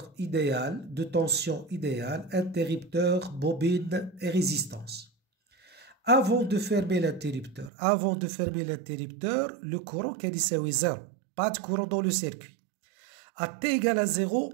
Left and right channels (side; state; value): left; drops out; at 7.7 s